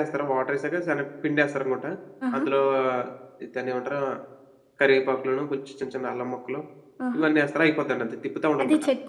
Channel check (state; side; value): identical; both; correlation 1.00